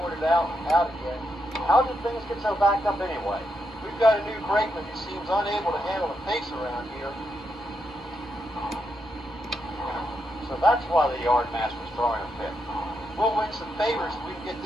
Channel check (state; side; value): normal; both; correlation 0.82